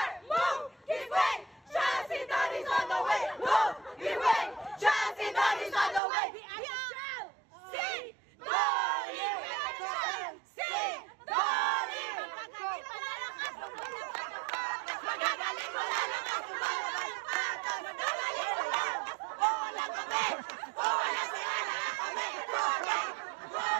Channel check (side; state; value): left; drops out; at 6.0 s